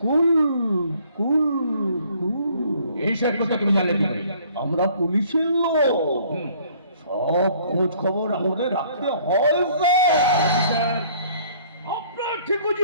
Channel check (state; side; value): inverted; both; correlation -0.58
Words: কুল কুল এইসব কথা তুমি জানলে কি করে? আমরা পুলিশের লোক, সব খোঁজ খবর আমাদের রাখতে হয় স্যার। আপনার